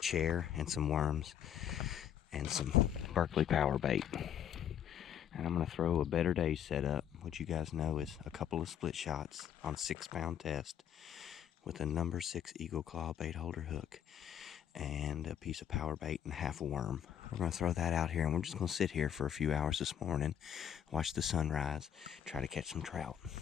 and some worms and some Berkeley power bait. And I'm gonna throw a Better Days setup, which you guys know is a couple of split shots on a 6-pound test with a number 6 Eagle Claw bait holder hook and a piece of power bait and half a worm. We're gonna throw that out here, and we're just gonna sit here for a few hours this morning, watch the sunrise, try to catch some trout.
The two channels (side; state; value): right; quieter; 9.3 dB